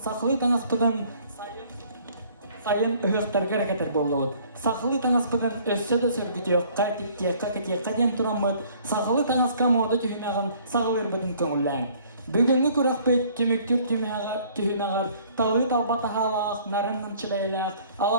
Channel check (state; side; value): inverted; both; correlation -0.57